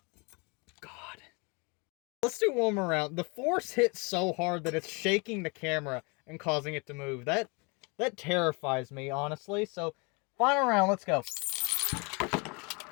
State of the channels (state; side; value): quieter; right; 30.5 dB